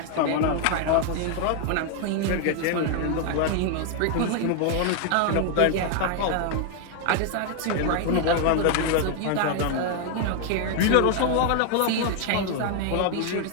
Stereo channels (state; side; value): different; both; correlation 0.00